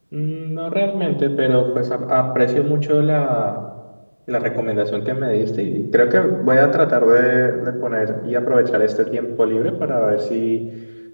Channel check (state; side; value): inverted; both; correlation -1.00